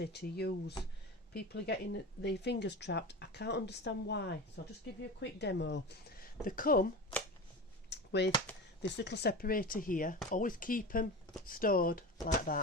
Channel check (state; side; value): normal; both; correlation 0.29